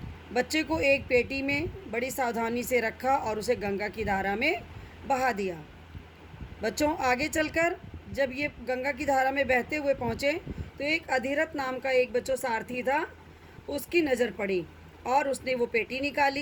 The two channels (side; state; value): both; identical; correlation 1.00